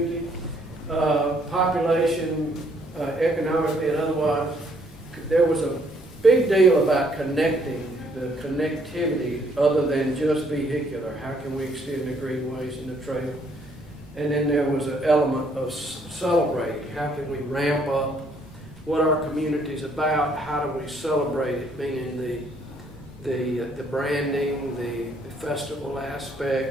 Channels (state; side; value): normal; both; correlation 0.67